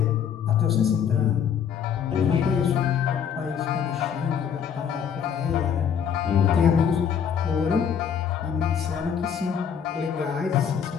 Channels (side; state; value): right; quieter; 7.8 dB